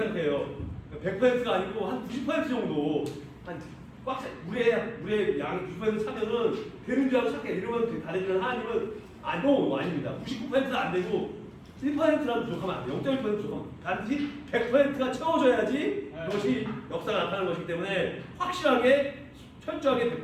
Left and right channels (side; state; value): both; identical; correlation 1.00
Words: 생각해요. 100%가 아니고 한 90% 정도 물에 양이 90% 차면은 되는 줄 알고 착해. 이러면 다르지만 하나님은 아닙니다. 99%는 안 되고 1%라도 부족하면 안 돼요. 0.1% 부족하면 반드시 100%가 채워져야지 그것이 역사가 나타나는 것이기 때문에 확실하게 철저하게